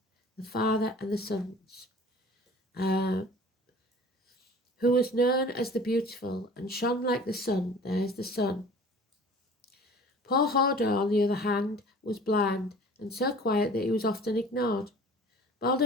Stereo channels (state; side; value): normal; both; correlation 0.45